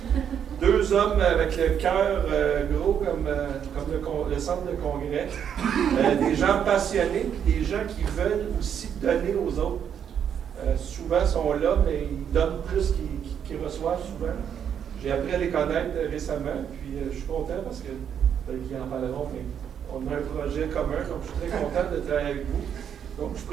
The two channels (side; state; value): left; quieter; 8.5 dB